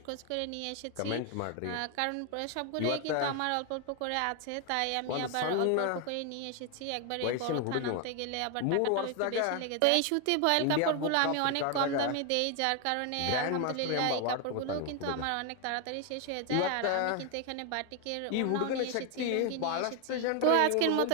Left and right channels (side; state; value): both; different; correlation 0.01